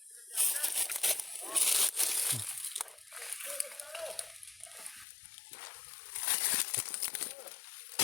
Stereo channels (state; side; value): drops out; right; at 5.1 s